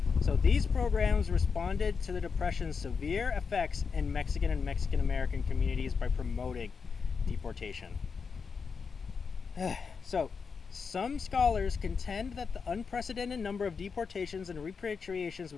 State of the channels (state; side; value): quieter; right; 5.5 dB